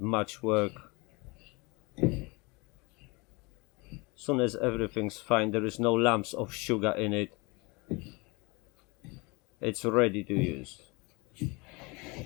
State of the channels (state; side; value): quieter; right; 26.8 dB